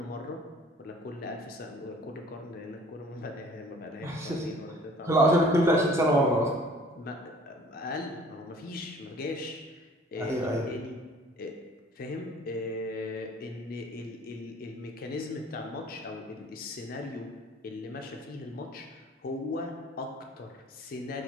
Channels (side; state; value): both; normal; correlation 0.51